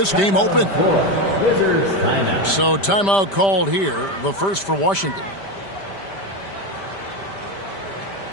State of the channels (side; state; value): right; late; 5.1 ms